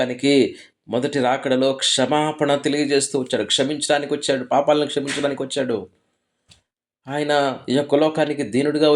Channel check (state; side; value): identical; both; correlation 1.00